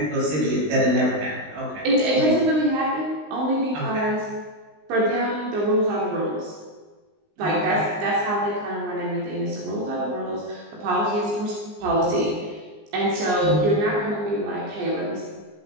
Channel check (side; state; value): left; late; 19 ms